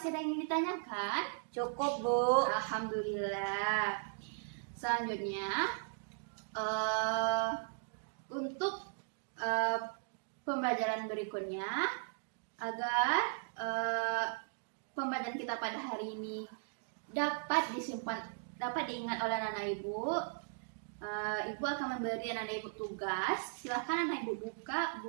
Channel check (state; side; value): silent; left; digital silence